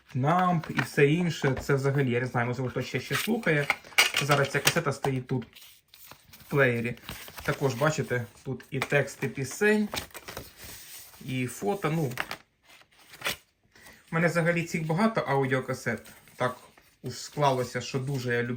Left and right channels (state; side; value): identical; both; correlation 1.00